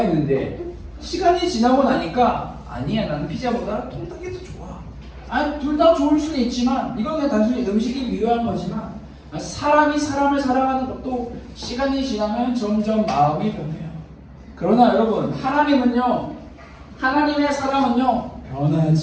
시간이 지나고 나니까 아니야, 나는 피자보다 통닭이 더 좋아. 아니, 둘 다 좋을 수는 있지만 이건 그냥 단순히 음식이 미묘한 거지만 사람이 사람을 사랑하는 것도 시간이 지나면 점점 마음이 변해요. 그러나 여러분, 하나님의 사랑은요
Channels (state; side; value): identical; both; correlation 1.00